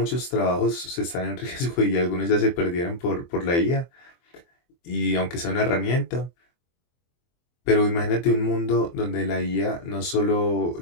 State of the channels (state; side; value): late; right; 23 ms